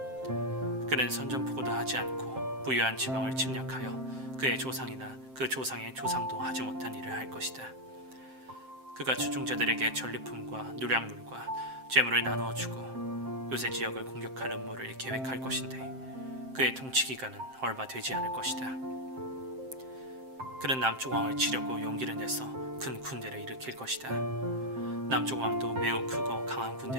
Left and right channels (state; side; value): late; left; 7.6 ms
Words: 그는 선전포고도 하지 않고 부유한 지방을 침략하여 그의 조상이나 그 조상의 조상도 하지 못한 일을 할 것이다. 그가 주종자들에게 전리품과 누량물과 재물을 나누어 주고 요새 지역을 공격할 음모를 계획할 것인데 그의 통치 기간은 얼마 되지 않을 것이다. 그는 남쪽 왕을 치려고 용기를 내서 큰 군대를 일으킬 것이다. 남쪽 왕도 매우 크고 강한